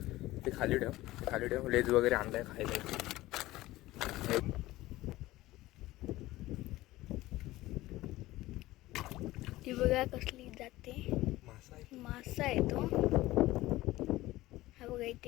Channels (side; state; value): right; quieter; 17.5 dB